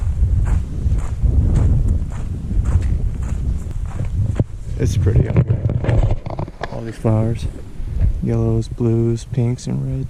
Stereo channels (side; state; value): both; identical; correlation 1.00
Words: It's pretty out here. All these flowers. Yellows, blues, pinks, and